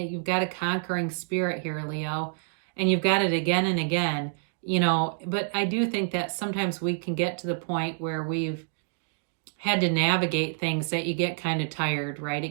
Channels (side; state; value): left; silent; digital silence